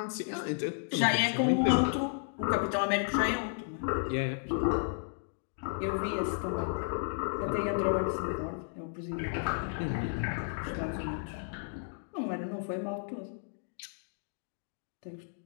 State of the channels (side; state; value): right; silent; digital silence